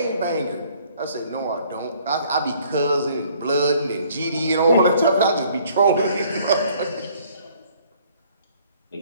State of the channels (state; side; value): inverted; both; correlation -0.59